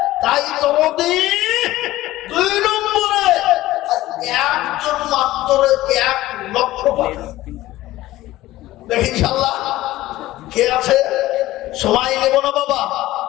তাই তোমাদের 2 নম্বরে একজন মাত্র 1 লক্ষ দেখি ইনশাআল্লাহ কে আছে। সময় নেব না বাবা,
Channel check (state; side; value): quieter; right; 16.3 dB